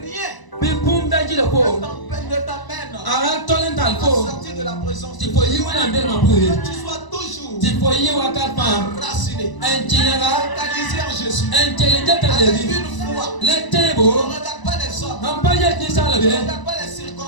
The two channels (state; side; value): late; right; 1.0 ms